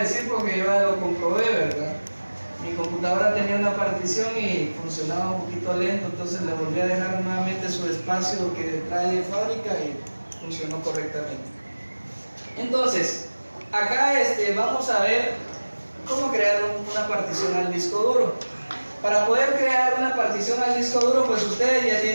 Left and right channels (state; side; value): inverted; both; correlation -1.00